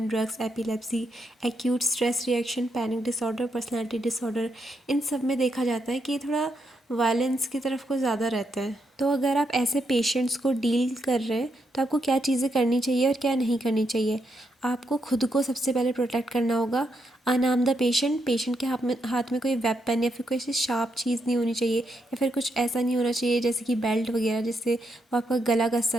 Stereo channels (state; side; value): normal; both; correlation 0.80